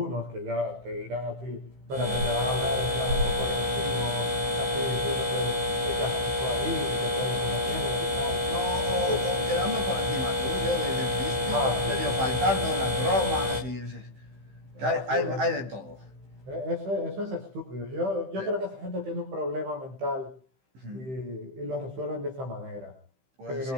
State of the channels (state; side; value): late; left; 15 ms